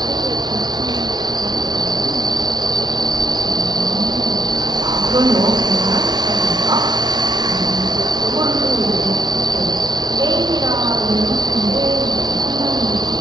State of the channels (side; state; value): left; late; 0.19 ms